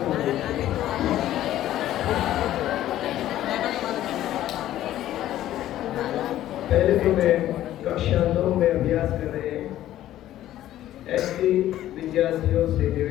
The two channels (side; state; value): right; quieter; 13.2 dB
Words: पहले तो मैं कक्षा 9 में अभ्यास कर रहे ऐसे विद्यार्थियों से